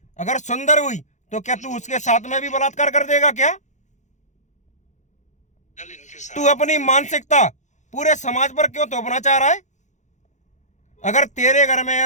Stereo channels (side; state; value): right; late; 0.35 ms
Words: अगर सुंदर हुई तो क्या तू उसके साथ में भी बलात्कार कर देगा क्या? तू अपनी मानसिकता पूरे समाज पर क्यों थोपना चाह रहा है? अगर तेरे घर में